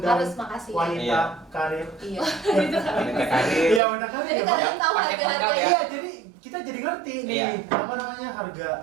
Harus makasih. wanita Iya. karir. Iya. wanita karir. Iya, wanita karir Jadi ya, Pak. kalian tahu pakai harga-harga pangkat ya. Iya, jadi kita jadi ngerti nih Iya. apa namanya harga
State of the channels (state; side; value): drops out; left; at 3.8 s